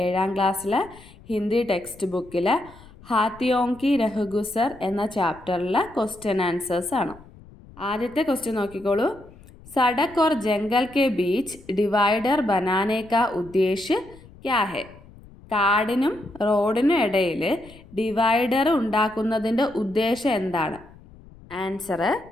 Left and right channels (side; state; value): left; noise; rumble, 22 dB below the sound